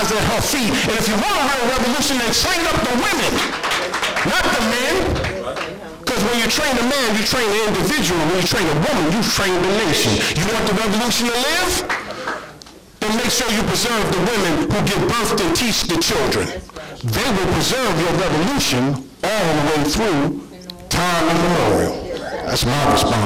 at her feet. And if you want a real revolution, then train up the women, not the men. Because when you train a man, you train the individual. When you train a woman, you train the nation. You want the revolution to live? Then make sure you preserve the women who give birth and teach the children. They will preserve your revolution all the way through time immemorial. That's my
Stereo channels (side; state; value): both; identical; correlation 1.00